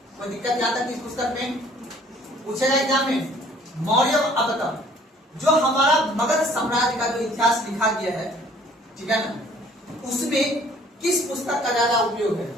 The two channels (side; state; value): both; normal; correlation 0.56